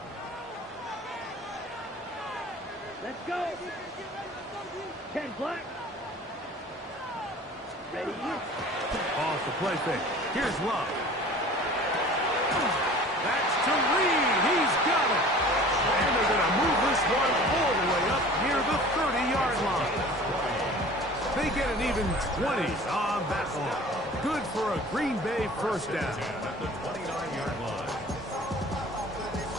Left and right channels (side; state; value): both; normal; correlation 0.44